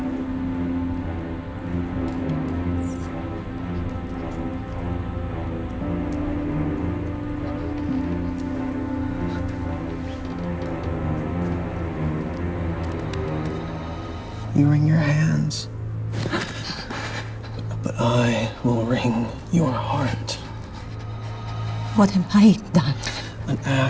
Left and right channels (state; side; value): identical; both; correlation 1.00